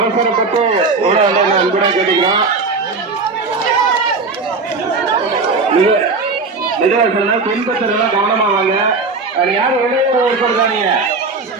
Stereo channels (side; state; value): left; quieter; 4.0 dB